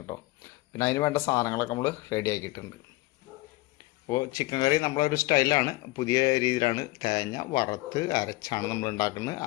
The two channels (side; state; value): right; quieter; 20.9 dB